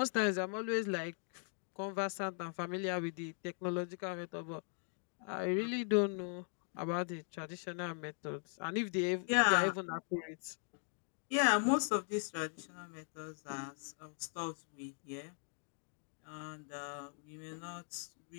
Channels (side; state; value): right; silent; 51 dB below the other